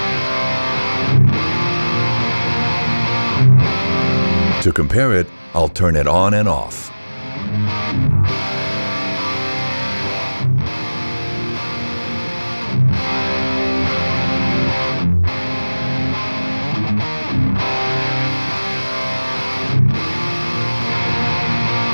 To compare it, I'll turn it on and off.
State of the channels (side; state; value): both; inverted; correlation -1.00